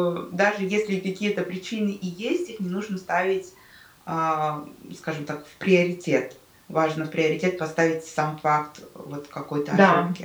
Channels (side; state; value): both; identical; correlation 1.00